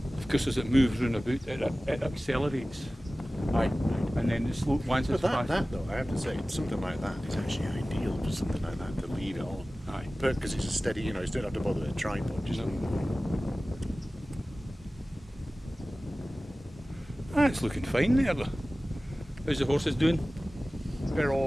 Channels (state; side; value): normal; both; correlation 0.97